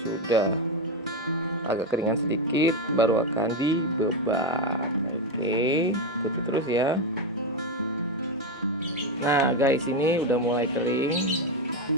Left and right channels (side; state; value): both; normal; correlation 0.09